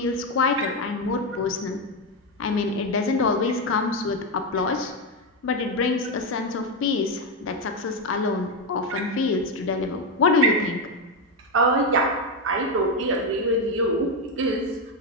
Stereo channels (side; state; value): both; normal; correlation 0.07